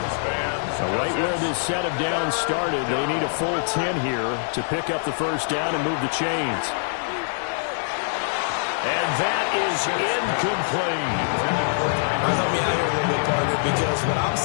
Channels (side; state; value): right; silent; digital silence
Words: So right where this set of downs started, they need a full 10 here to pick up the 1st down and move the chains. And that is incomplete. Help me out here a little bit, partner, because what I'm